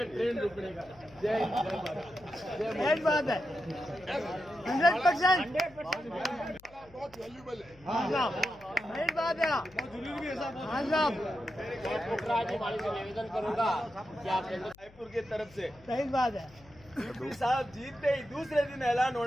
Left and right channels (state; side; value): noise; left; hum, 25 dB below the sound